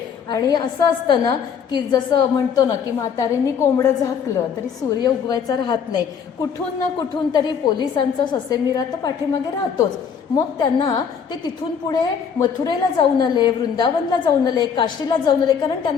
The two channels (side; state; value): right; quieter; 7.0 dB